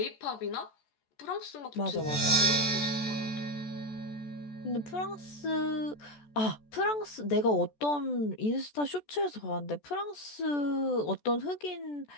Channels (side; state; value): right; late; 14 ms